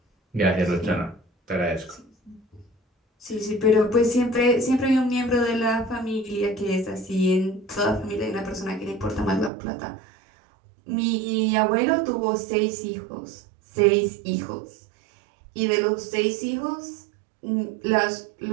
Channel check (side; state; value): left; drops out; at 9.5 s